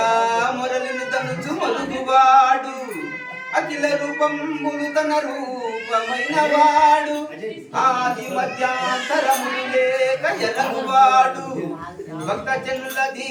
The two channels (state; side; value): identical; both; correlation 1.00